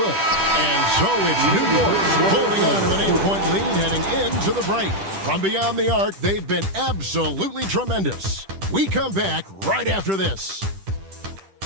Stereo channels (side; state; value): left; late; 10 ms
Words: And so it's New York holding on to an 8-point lead heading into the break. From beyond the arc, they've been absolutely tremendous. We come back right after this.